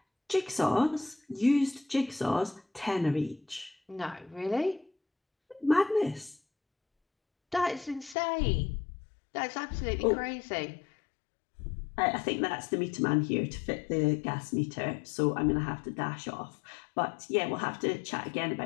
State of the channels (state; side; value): drops out; right; at 8.2 s